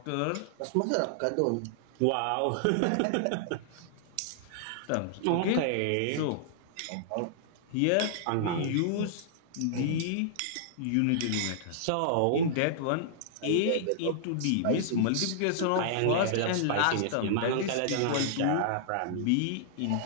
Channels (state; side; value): different; both; correlation -0.01